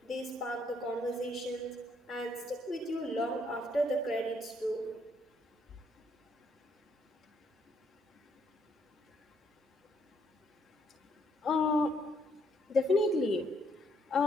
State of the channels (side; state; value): both; normal; correlation 0.71